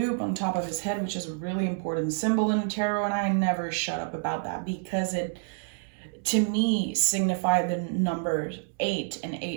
on top of his head, which is a really important symbol in tarot, and I never shut up about that because to me signify the number 8, and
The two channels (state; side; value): silent; left; 59 dB below the other